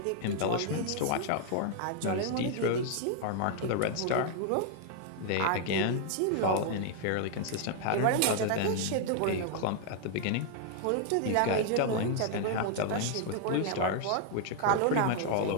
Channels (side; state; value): both; different; correlation 0.00